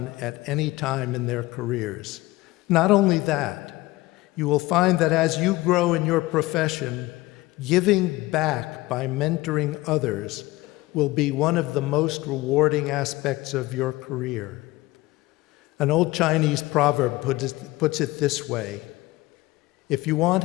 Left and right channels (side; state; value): right; quieter; 19.6 dB